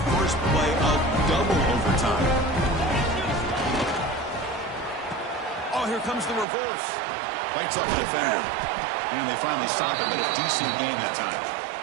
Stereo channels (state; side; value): drops out; left; at 6.5 s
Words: play of double overtime. Oh, here comes the reverse. Fights up the defender. And they finally stop it, but a decent gain that time.